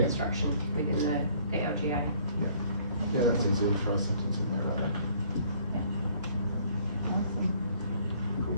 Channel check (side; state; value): both; inverted; correlation -0.59